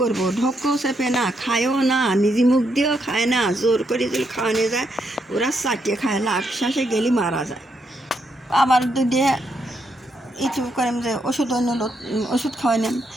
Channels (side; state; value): both; normal; correlation 0.78